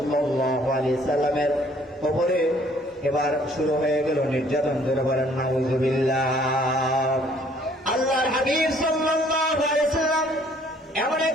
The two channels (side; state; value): both; normal; correlation 0.60